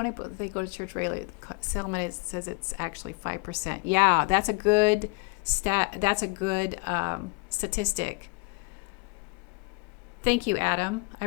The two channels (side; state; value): right; quieter; 30.9 dB